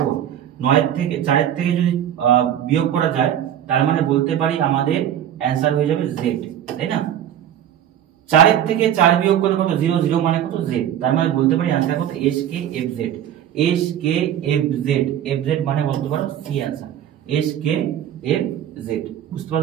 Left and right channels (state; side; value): quieter; left; 10.5 dB